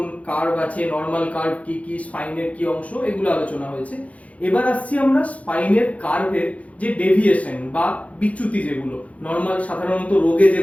কার্ভ আছে, নর্মাল কার্ভ কি কি, স্পাইনের কি অংশ, এগুলো আলোচনা হয়েছে। এবার আসছি আমরা স্পাইনের কার্ভের যে ডেভিয়েশন বা বিচ্যুতি, যেগুলো নর্মাল সাধারণত রোগে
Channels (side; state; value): right; late; 0.066 ms